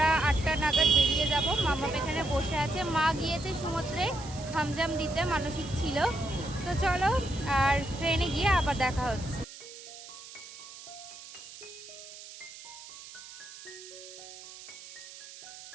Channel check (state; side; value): noise; right; hiss, 15 dB below the sound